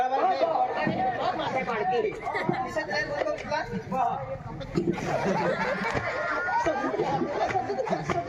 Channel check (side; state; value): both; identical; correlation 1.00